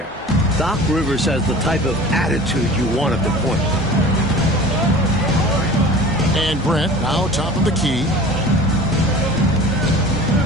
Doc Rivers has the type of attitude you want at the point. And Grant now top of the key.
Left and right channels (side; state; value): both; normal; correlation 0.40